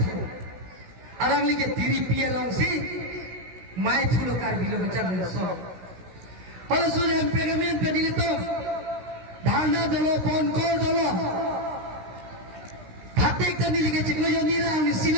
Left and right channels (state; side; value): late; left; 16 ms